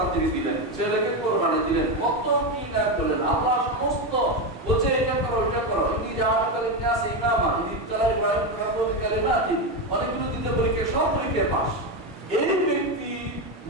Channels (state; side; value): normal; both; correlation 0.12